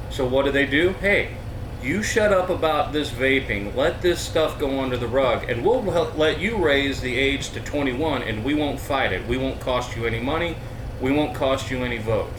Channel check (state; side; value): identical; both; correlation 1.00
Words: So what do? Hey, you shut up about this vaping. Let this stuff go under the rug, and we'll let you raise the age to 21, and we won't fight it. We won't cost you any money. We won't cost you any